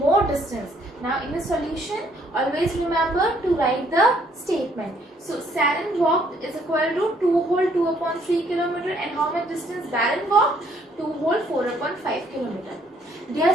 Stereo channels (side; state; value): both; normal; correlation 0.66